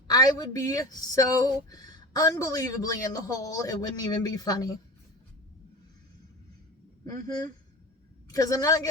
I would be so unbelievably in the hole, it wouldn't even be funny. Because I'm not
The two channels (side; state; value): both; normal; correlation 0.32